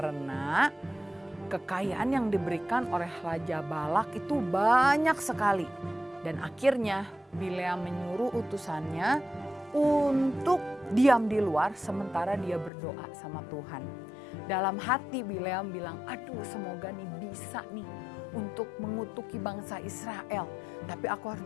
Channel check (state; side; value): drops out; right; at 12.7 s